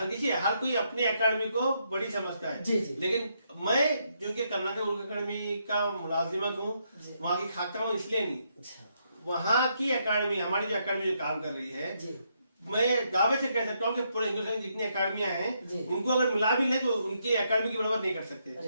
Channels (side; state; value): both; inverted; correlation -0.77